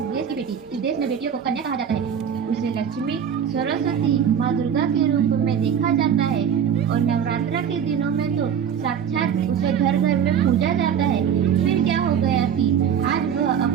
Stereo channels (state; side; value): quieter; left; 8.2 dB